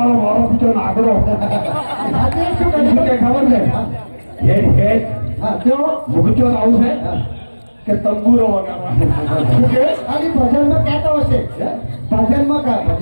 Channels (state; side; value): inverted; both; correlation -1.00